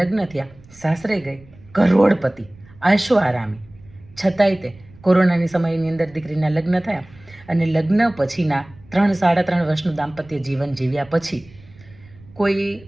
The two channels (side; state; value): right; noise; rumble, 24 dB below the sound